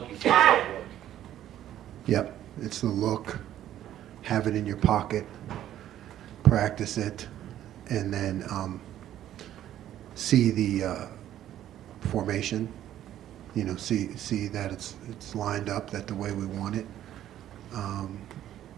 you think it's going to work? Yep, it's the look, have it in your pocket, practice it, and then see the formation. You know, see that it's lined up that the way we want it.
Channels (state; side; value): quieter; left; 11.9 dB